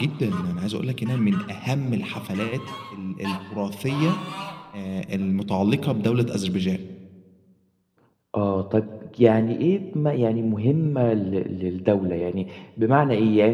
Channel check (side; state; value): both; identical; correlation 1.00